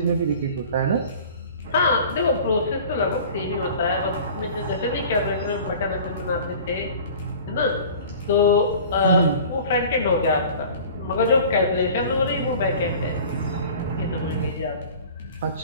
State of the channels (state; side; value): inverted; both; correlation -0.43